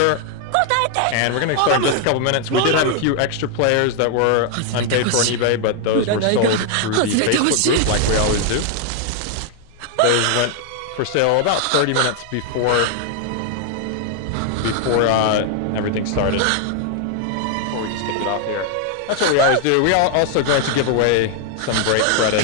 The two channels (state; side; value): different; both; correlation 0.00